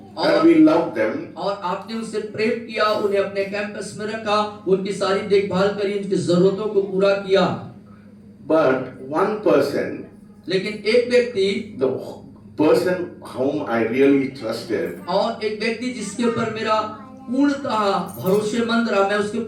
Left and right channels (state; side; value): identical; both; correlation 1.00